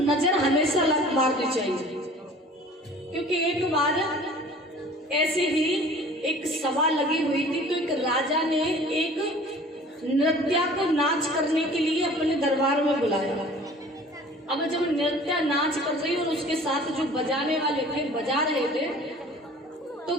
हमेशा मारनी चाहिए। क्योंकि एक बार ऐसे ही एक सभा लगी हुई थी, तो एक राजा ने एक नृत्या को नाच करने के लिए अपने दरबार में बुलाया। अब जब नृत्या नाच कर रही और उसके साथ जो बजाने वाले थे बजा रहे थे, तो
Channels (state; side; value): normal; both; correlation 0.47